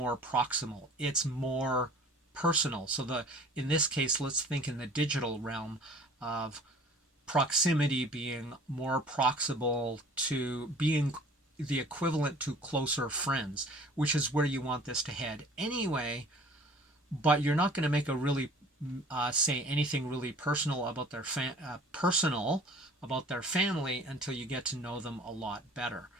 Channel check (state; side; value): normal; both; correlation 0.48